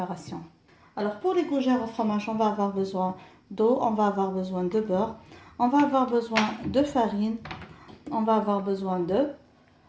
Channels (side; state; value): both; identical; correlation 1.00